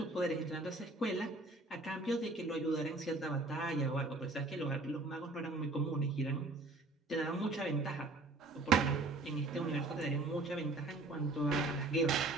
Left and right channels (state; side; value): quieter; left; 3.0 dB